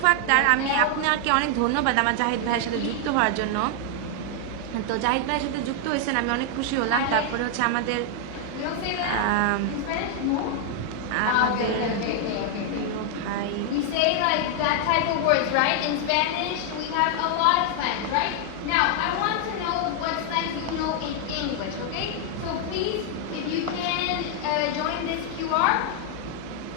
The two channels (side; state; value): both; different; correlation 0.00